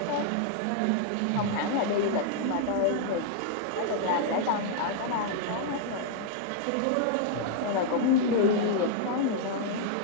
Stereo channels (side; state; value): both; different; correlation -0.01